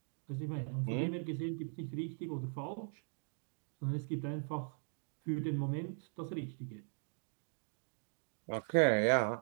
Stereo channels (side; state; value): left; silent; 51 dB below the other